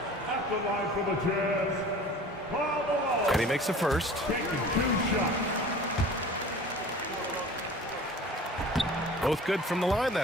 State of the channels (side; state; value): both; normal; correlation 0.42